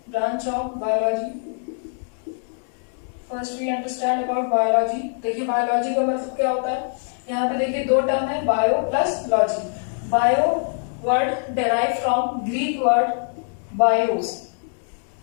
Branch of biology. First we understand about biology. देखिए biology का मतलब क्या होता है. यहाँ पे देखिए दो टर्म है, bio plus logy. Bio word derive from Greek word BIOS,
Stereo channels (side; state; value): right; silent; 63 dB below the other